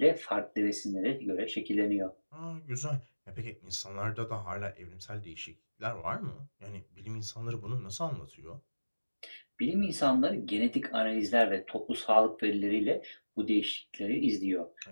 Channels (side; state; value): both; inverted; correlation -1.00